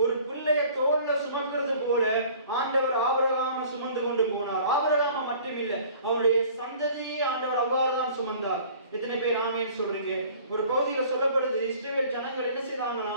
ஒரு பிள்ளைய தோல்ல சுமக்கிறது போல ஆண்டவர் ஆபிரகாமை சுமந்து கொண்டு போனார். ஆபிரகாமை மட்டுமில்ல, அவருடைய சந்ததியை ஆண்டவர் அவ்வாறுதான் சுமந்தார். எத்தனை பேர் ஆமீன் சொல்றீங்க? ஒரு பகுதியில் சொல்லப்படுது, இஸ்ரவேல் ஜனங்கள் என்ன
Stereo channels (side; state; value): both; inverted; correlation -0.49